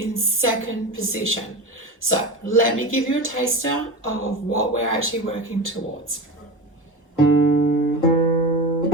second position. So let me give you a taster of what we're actually working towards.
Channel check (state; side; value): normal; both; correlation 0.24